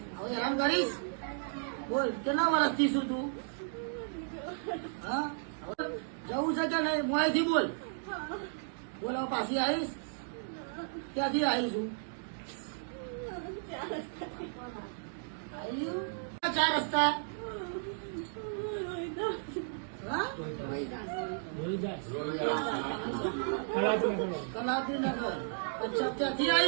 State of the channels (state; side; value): silent; left; digital silence